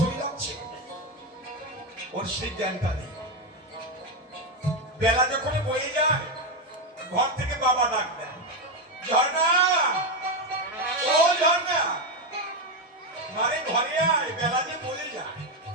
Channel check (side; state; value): both; normal; correlation 0.09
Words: চলে যাচ্ছে, ওর সেই জ্ঞানটা নেই। বেলা যখন বয়ে যায়, ঘর থেকে বাবা ডাক দেয়, ঝর্ণা, ও ঝর্ণা, মারে ঘরে আয়, বেলা যে বয়ে যায়।